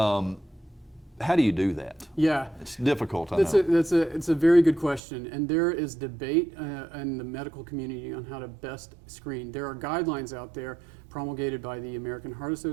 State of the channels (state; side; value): drops out; left; at 5.0 s